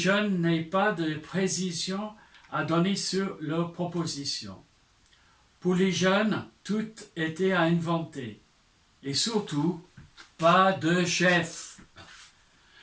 n'aient pas de précision à donner sur leurs propositions. Pour les jeunes, tout était à inventer. Et surtout, pas de chef.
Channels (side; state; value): both; identical; correlation 1.00